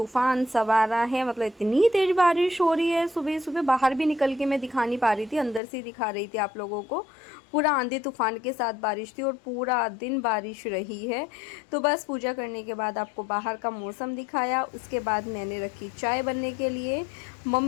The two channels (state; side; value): drops out; right; at 5.6 s